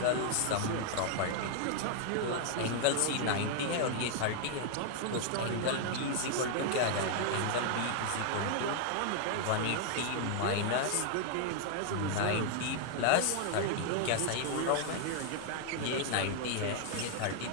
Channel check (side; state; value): both; different; correlation 0.00